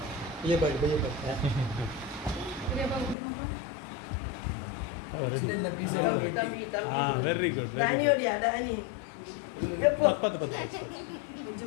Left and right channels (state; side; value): drops out; right; at 3.2 s